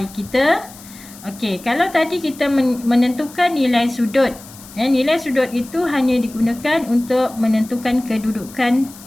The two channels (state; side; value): noise; left; hiss, 19 dB below the sound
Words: kita. Okey, kalau tadi kita menentukan nilai sudut. Nilai sudut itu hanya digunakan untuk menentukan kedudukan